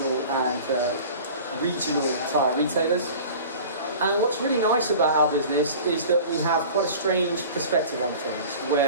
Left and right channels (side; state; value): both; inverted; correlation -0.41